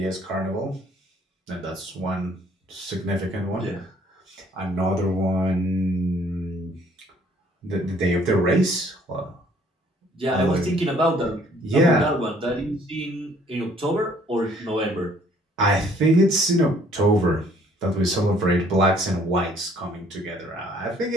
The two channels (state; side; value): normal; both; correlation 0.60